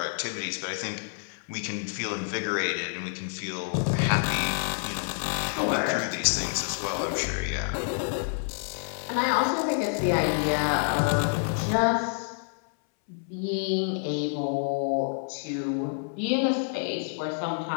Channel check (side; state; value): right; silent; 59 dB below the other